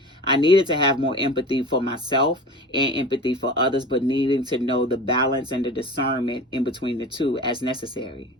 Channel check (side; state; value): both; normal; correlation 0.35